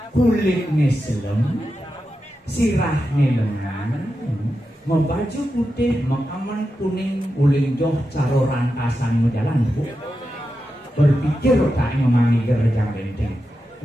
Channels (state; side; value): normal; both; correlation 0.89